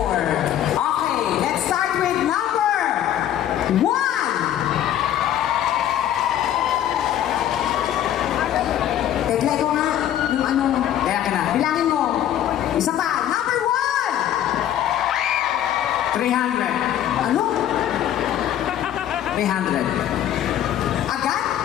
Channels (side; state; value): right; quieter; 11.3 dB